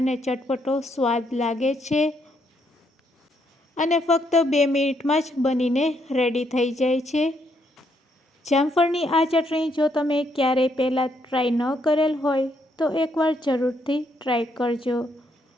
ચટપટો સ્વાદ લાગે છે અને ફક્ત 2 મિનિટમાં જ બનીને રેડી થઈ જાય છે. જામફળની આ ચટણી જો તમે ક્યારેય પહેલાં ટ્રાય ન કરેલ હોય તો એકવાર જરૂરથી ટ્રાય કરજો.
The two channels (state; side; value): normal; both; correlation 0.74